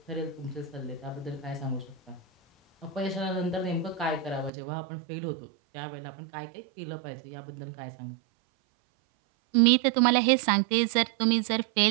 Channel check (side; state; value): left; drops out; at 4.5 s